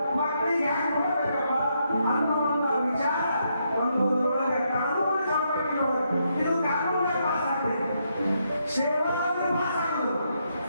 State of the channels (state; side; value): inverted; both; correlation -0.78